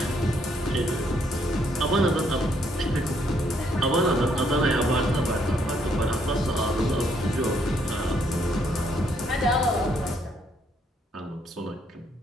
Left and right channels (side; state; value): both; normal; correlation 0.71